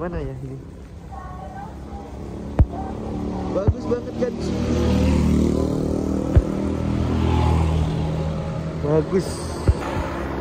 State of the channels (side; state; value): both; identical; correlation 1.00